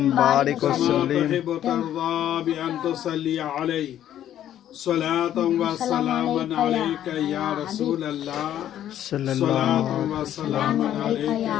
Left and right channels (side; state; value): right; quieter; 11.4 dB